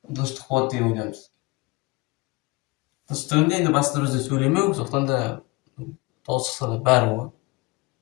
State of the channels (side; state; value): right; quieter; 24.5 dB